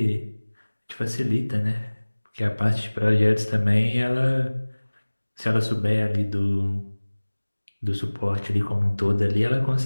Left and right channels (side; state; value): both; inverted; correlation -1.00